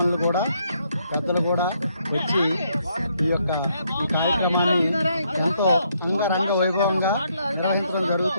కూడా, పెద్దలు కూడా వచ్చి ఈ కార్యక్రమాన్ని ఎంతో అంగరంగ వైభవంగా నిర్వహించడం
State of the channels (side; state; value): both; inverted; correlation -0.73